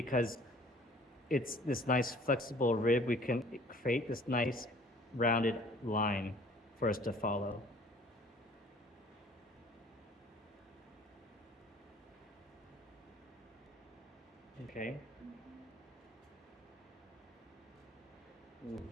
it's this nice flexible rib, we can create this nice rounded line for us to follow. Okay. Ooh.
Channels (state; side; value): normal; both; correlation 0.53